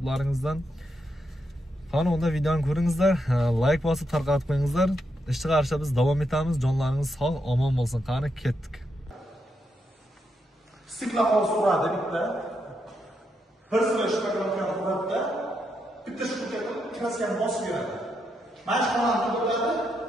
Qani unda videoni ko'ringizlar, like bosib tarqatib qo'yingizlar. Ish chiqarishda biz davom etamiz. Jonlaringiz sog', omon bo'lsin. Qani ketdik. Stiklaqol so'radi bitta. Bir sira shpaklokani qo'yadi. Bitta shpaklokani kraskani bosib beradi. Mana shu xonani to'ladi,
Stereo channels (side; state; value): both; normal; correlation 0.82